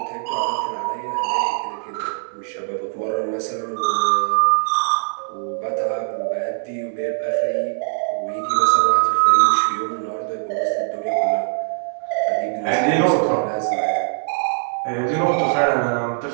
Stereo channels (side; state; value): left; silent; 63 dB below the other